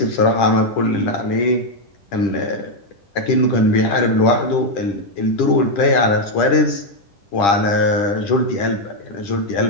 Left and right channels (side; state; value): right; late; 10 ms